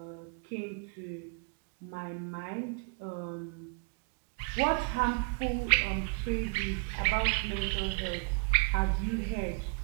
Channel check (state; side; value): quieter; left; 36.3 dB